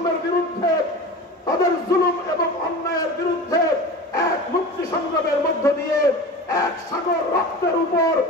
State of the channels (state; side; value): normal; both; correlation 0.33